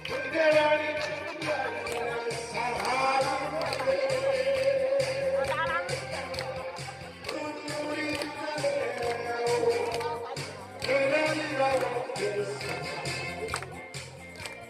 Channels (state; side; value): identical; both; correlation 1.00